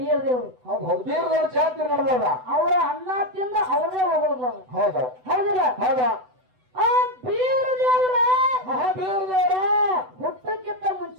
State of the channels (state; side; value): late; left; 7.9 ms